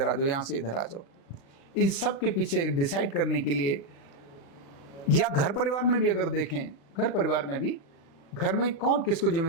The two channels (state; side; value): late; right; 36 ms